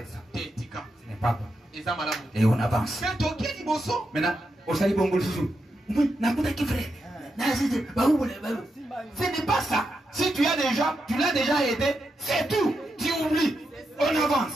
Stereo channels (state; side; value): normal; both; correlation 0.85